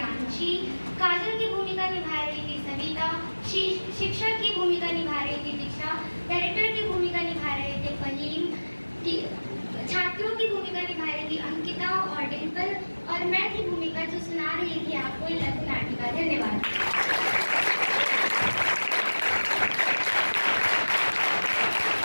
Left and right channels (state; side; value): inverted; both; correlation -1.00